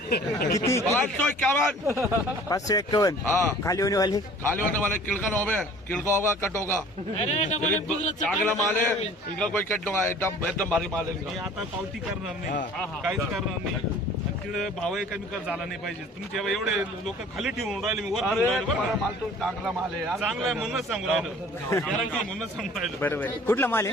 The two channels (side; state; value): both; normal; correlation 0.49